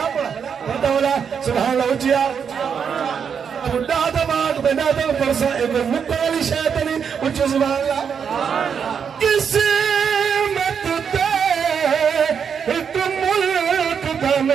پڑھا سبحان اللہ اچھیا خدا دماغ بنا دل پرسا ایک مکالی شیطنی اچھا سبحان اللہ. قسمت تے ایک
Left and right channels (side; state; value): left; quieter; 7.0 dB